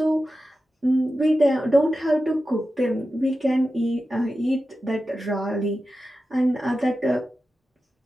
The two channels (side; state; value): both; normal; correlation 0.92